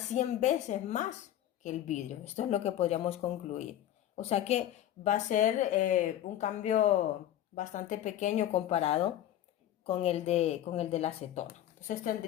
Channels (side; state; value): right; quieter; 12.1 dB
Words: 100 veces más que el vidrio. Esto es lo que podríamos concluir. O sea que va a ser un cambio bastante pequeño comparado con el de la acetona. Entonces